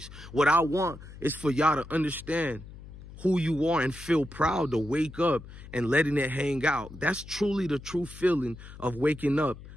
What I want is for y'all to understand who you are and feel proud to wake up and letting it hang out. That's truly the true feeling of waking up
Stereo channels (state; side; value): noise; left; hum, 16 dB below the sound